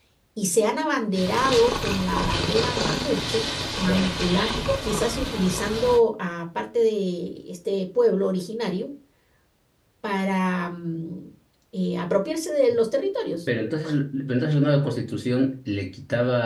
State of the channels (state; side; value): identical; both; correlation 1.00